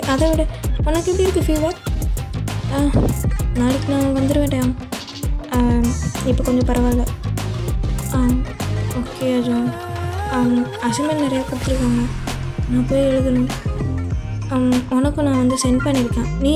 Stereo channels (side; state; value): both; identical; correlation 1.00